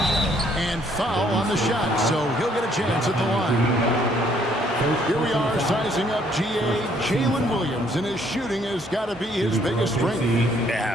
And foul on the shot, so he'll get a chance at the line. Here we are sizing up G.A. Jalen Williams, and his shooting has got to be his biggest strength.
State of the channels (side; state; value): both; normal; correlation 0.65